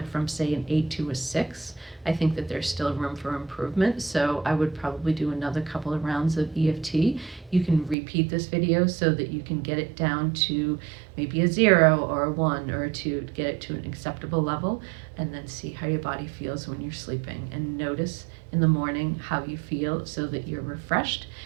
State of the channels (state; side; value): drops out; left; at 8.0 s